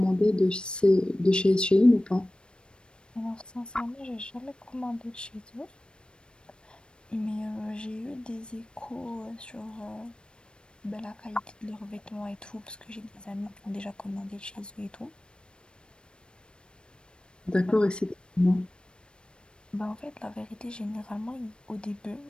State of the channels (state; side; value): late; right; 0.054 ms